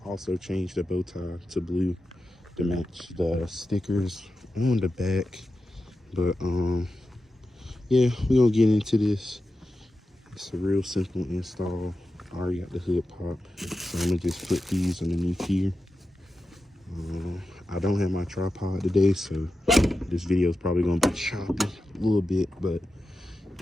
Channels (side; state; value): both; normal; correlation 0.91